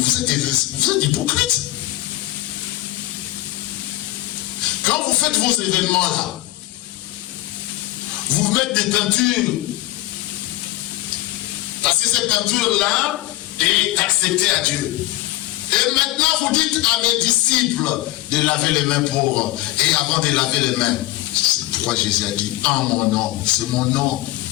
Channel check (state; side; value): quieter; right; 17.4 dB